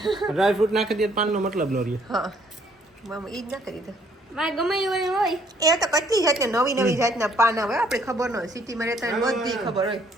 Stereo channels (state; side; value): normal; both; correlation 0.64